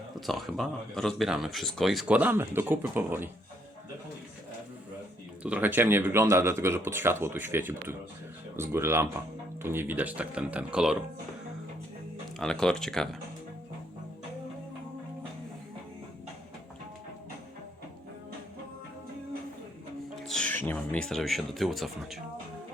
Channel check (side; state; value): both; normal; correlation 0.71